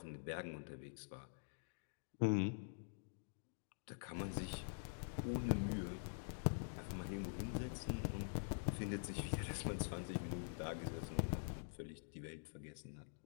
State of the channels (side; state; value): right; silent; digital silence